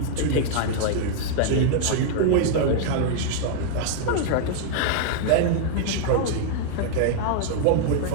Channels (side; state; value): both; different; correlation -0.01